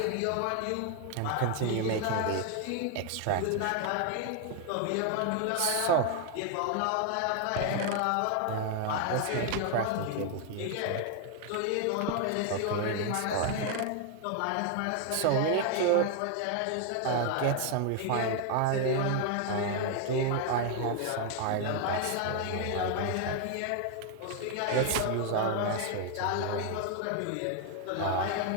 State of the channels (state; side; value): different; both; correlation 0.00